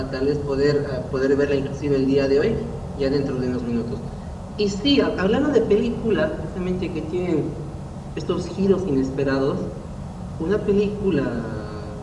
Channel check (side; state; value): both; identical; correlation 1.00